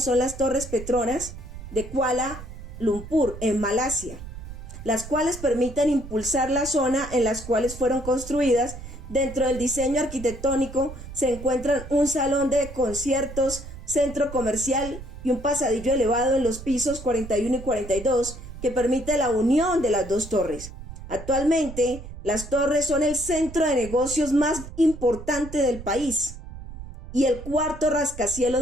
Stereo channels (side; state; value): right; noise; rumble, 12 dB below the sound